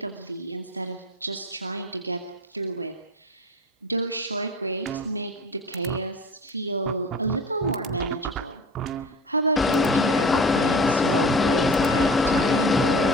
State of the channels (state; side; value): normal; both; correlation 0.37